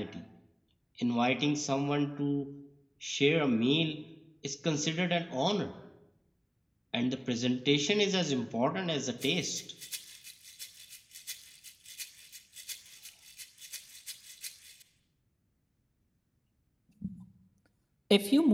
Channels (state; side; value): identical; both; correlation 1.00